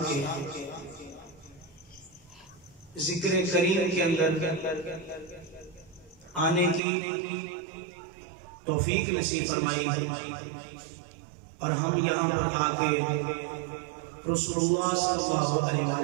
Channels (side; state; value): left; drops out; at 6.8 s